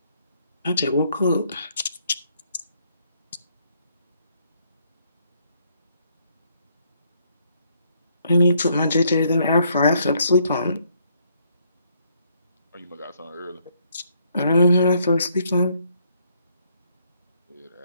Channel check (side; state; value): both; inverted; correlation -0.70